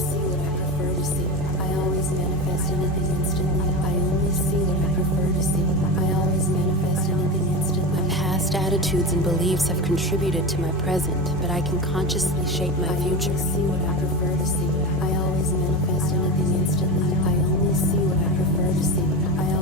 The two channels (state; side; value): normal; both; correlation 0.22